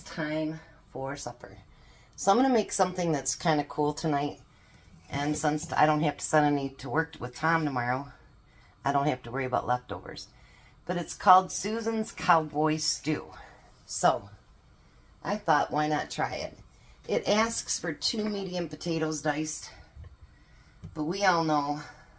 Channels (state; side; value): identical; both; correlation 1.00